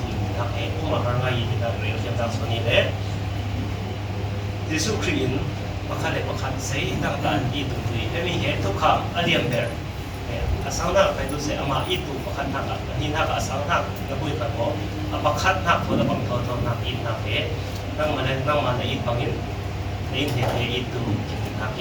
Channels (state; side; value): identical; both; correlation 1.00